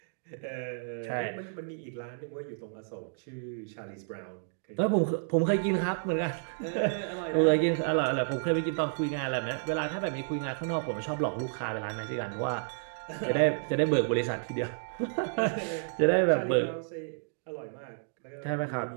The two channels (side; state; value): left; silent; digital silence